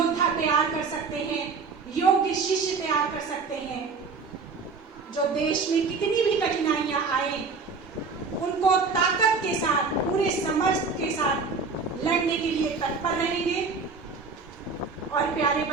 तैयार कर सकते हैं, योग्य शिष्य तैयार कर सकते हैं, जो देश में कितनी भी कठिनाइयां आए उनको ताकत के साथ, पूरे समर्थ के साथ लड़ने के लिए तत्पर रहेंगे। और प्यारे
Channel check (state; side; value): quieter; left; 4.7 dB